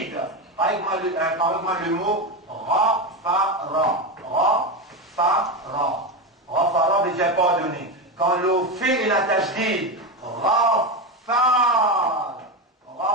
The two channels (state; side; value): normal; both; correlation 0.15